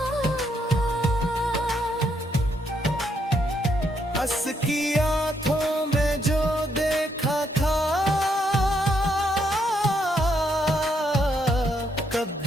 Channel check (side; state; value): both; normal; correlation 0.75